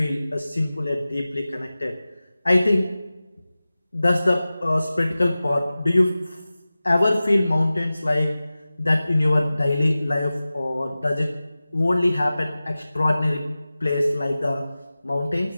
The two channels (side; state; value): both; inverted; correlation -0.96